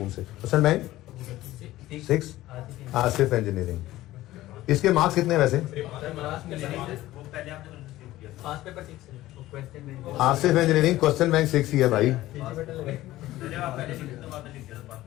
से। क्वेश्चन बैंक 6 आसिफ इंजीनियरिंग, इसके मार्क्स कितने वैसे, आसिफ इंजीनियरिंग क्वेश्चन बैंक 6 ही है भाई,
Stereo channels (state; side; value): quieter; right; 16.0 dB